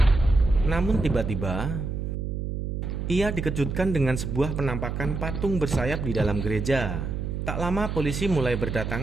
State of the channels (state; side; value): noise; right; hum, 4 dB below the sound